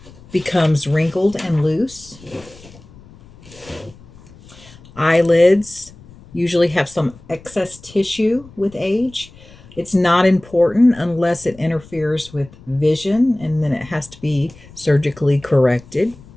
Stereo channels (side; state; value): left; noise; rumble, 22 dB below the sound